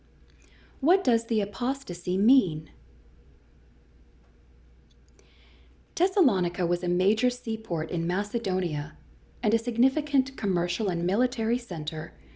What does the apostasy mean? Thessalonica was a major seaport in Macedonia and a significant commercial and military center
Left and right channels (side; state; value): both; identical; correlation 1.00